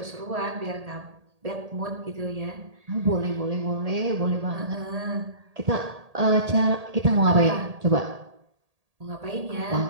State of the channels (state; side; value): late; left; 1.8 ms